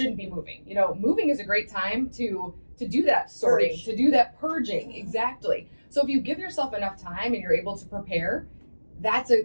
be moving. Moving is a great time to do that sorting, to do that purging. Exactly. So if you give yourself enough time and you're able to prepare, that's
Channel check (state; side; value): inverted; both; correlation -1.00